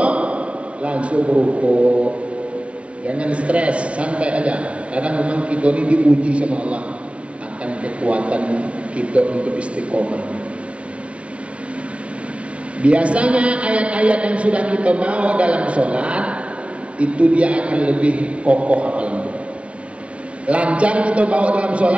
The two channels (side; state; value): left; late; 0.062 ms